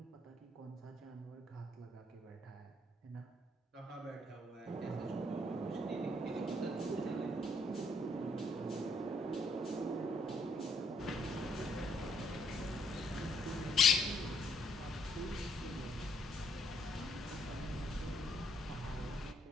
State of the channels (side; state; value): both; normal; correlation 0.69